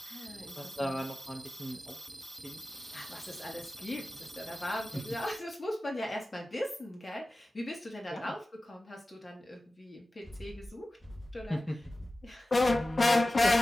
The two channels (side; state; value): both; normal; correlation 0.96